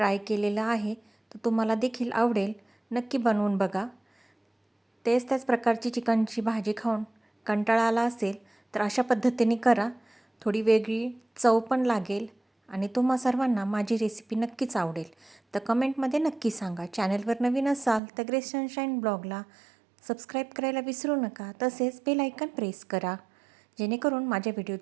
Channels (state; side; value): drops out; left; at 18.0 s